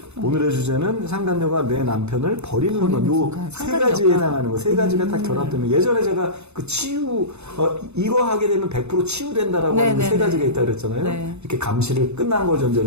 오늘의 주제는 상간녀가 내 남편을 버리는 순간. 요 세 가지에 해당하는 거. 세 가지가 딱 결합되면. 예전에 제가 이거 하게 되면 100% 치유된다라고 하는 세 가지가 있다 그랬잖아요. 이렇게 감시를 끝난 걸 전제로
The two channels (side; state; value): left; late; 0.81 ms